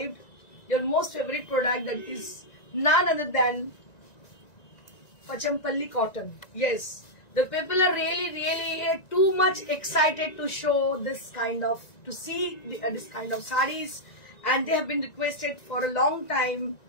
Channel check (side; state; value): right; late; 1.9 ms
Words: Your most favorite product, that is none other than Pachampalli cotton. Yes, the people are really too much excited to show this kind of, to see this kind of sarees, and they have been requested for a long time